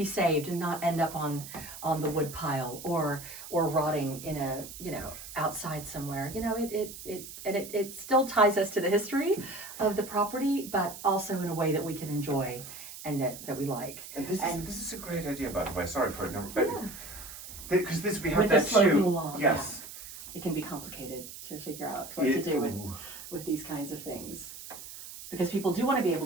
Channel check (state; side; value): noise; right; hiss, 13 dB below the sound